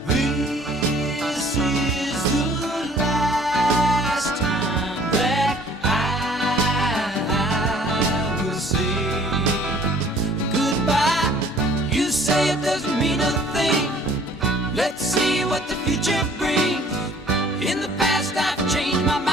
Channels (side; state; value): both; normal; correlation 0.54